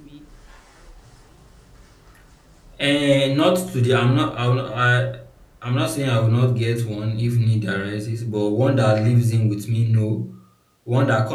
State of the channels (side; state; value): both; identical; correlation 1.00